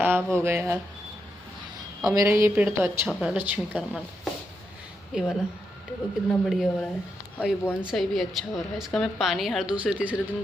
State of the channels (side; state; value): both; normal; correlation 0.83